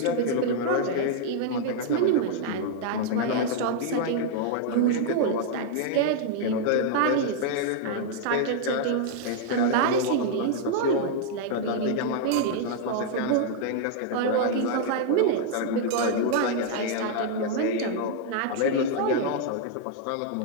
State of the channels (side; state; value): both; different; correlation -0.01